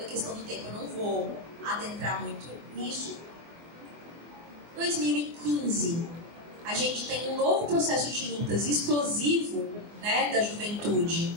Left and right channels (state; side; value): late; left; 24 ms